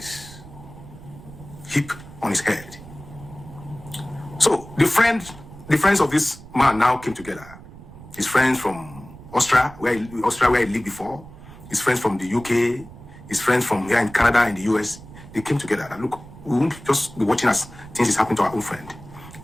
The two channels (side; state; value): right; noise; rumble, 17 dB below the sound